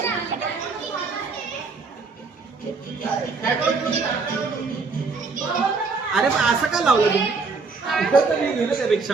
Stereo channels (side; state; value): left; quieter; 4.4 dB